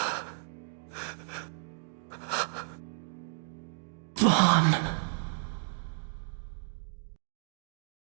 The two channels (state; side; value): silent; left; digital silence